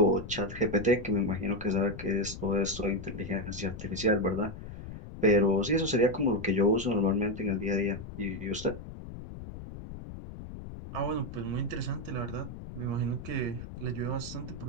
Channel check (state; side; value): noise; left; rumble, 11 dB below the sound